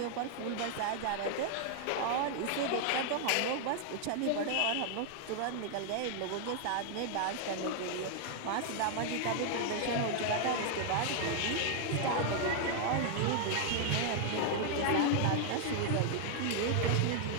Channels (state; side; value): different; both; correlation 0.00